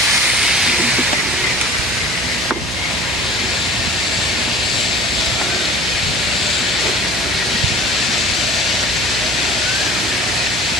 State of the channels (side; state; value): right; noise; hum, 10 dB below the sound